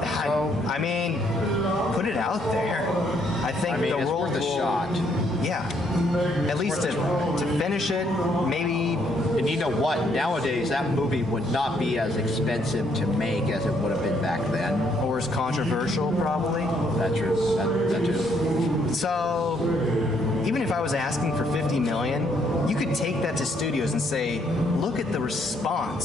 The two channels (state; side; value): normal; both; correlation 0.70